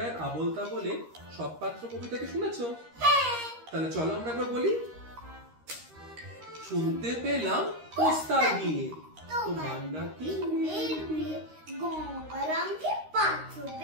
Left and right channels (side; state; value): left; late; 13 ms